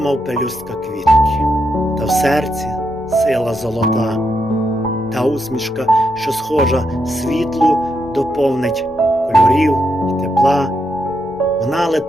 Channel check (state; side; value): normal; both; correlation 0.81